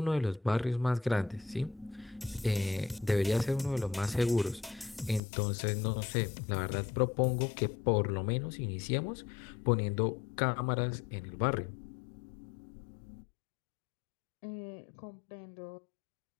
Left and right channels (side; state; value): right; drops out; at 5.2 s